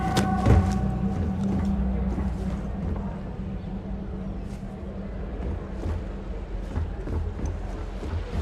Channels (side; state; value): both; identical; correlation 1.00